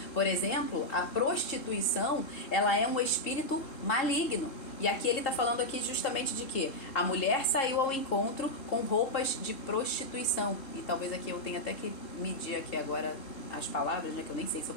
Por exemplo, a prostituição, ela é um espírito maligno. E aqui ele está falando aqui justamente de que a mulher saiu ao encontro com roupas de prostituição. E talvez aqui eu tenha até que medir aqui agora as palavras, né? Que eu nem sei se eu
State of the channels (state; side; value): late; right; 3.7 ms